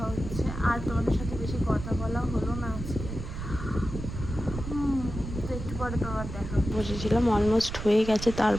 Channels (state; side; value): noise; right; rumble, 8 dB below the sound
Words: হচ্ছে। আর তোমাদের সাথে বেশি কথা বলা হলো না আজকে, তো একটু পরে তোমার দেখা বসেছিলাম, অলমোস্ট হয়ে গেছে,